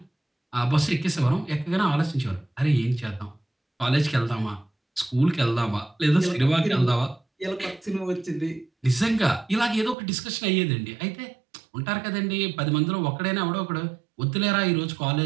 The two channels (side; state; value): left; drops out; at 10.0 s